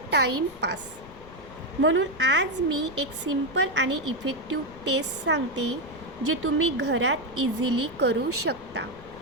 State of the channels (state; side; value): noise; left; rumble, 20 dB below the sound